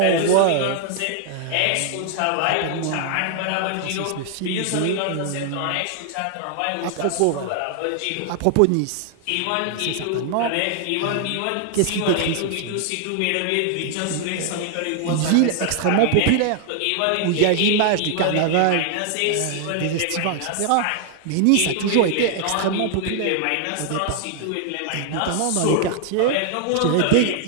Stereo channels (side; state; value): both; different; correlation 0.00